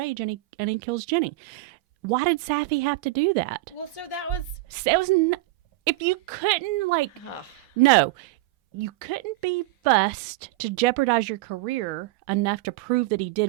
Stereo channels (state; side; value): quieter; left; 19.7 dB